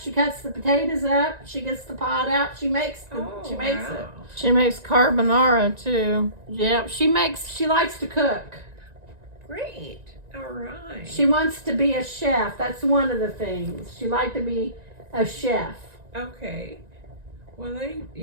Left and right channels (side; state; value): left; late; 1.9 ms